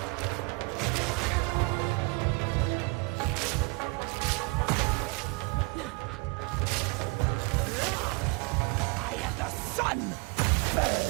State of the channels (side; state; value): left; quieter; 29.3 dB